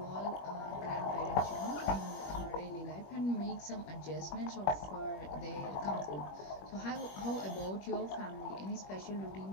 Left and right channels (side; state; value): right; late; 21 ms